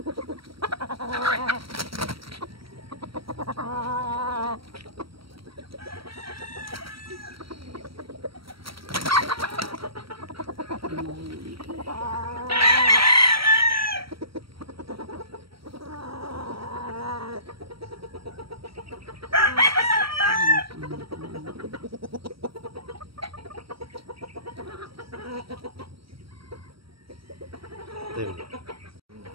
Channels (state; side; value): late; left; 0.75 ms